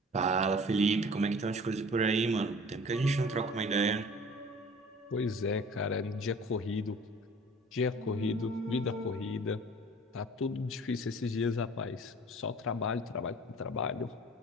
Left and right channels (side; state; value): both; normal; correlation 0.46